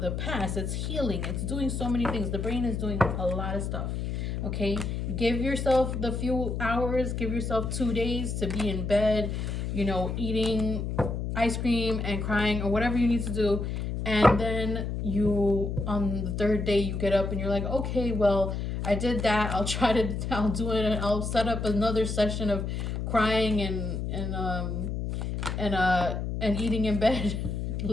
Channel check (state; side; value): noise; left; hum, 3 dB below the sound